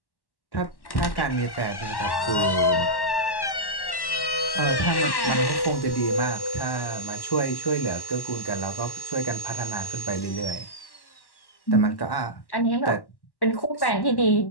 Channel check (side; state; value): right; late; 1.1 ms